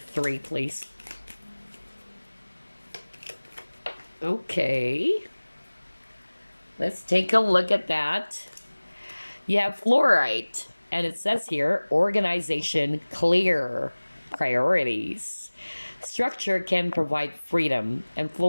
please. Okay. Let's take a look at that. You have fluorite. And it says here, organization clear. Priorities. Structure can provide freedom, and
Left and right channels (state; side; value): inverted; both; correlation -1.00